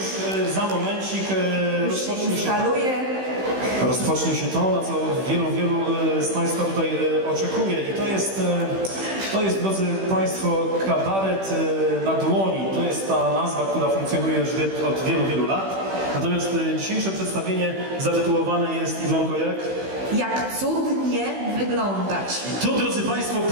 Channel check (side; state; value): left; late; 15 ms